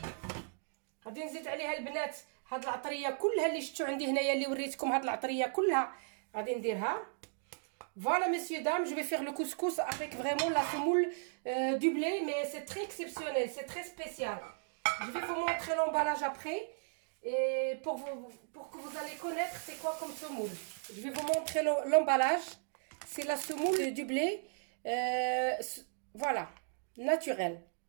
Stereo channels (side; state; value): left; silent; digital silence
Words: غادي نزيد عليها البنات هاد العطريه كلها اللي شفتوا عندي هنايا اللي وريتكم. هاد العطريه كلها غادي نديرها. Voilà messieurs dames, je vais faire le couscous avec vraiment la semoule du blé, mais c'est très exceptionnel, c'est très spécial. Je vais vous montrer l'emballage après et pour que vous allez connaître c'est quoi comme semoule. Je vais vous montrer l'emballage. C'est la semoule du blé, voilà, naturelle.